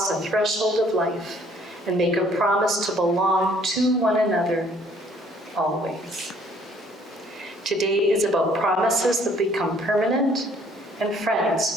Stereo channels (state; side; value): normal; both; correlation 0.60